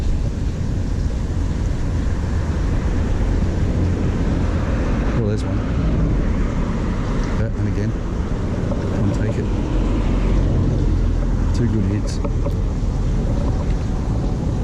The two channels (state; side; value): identical; both; correlation 1.00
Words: Oh, there's one. Yeah, and again. Come on, take it. Two good hits.